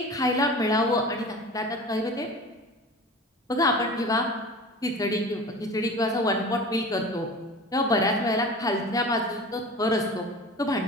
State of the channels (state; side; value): normal; both; correlation 0.36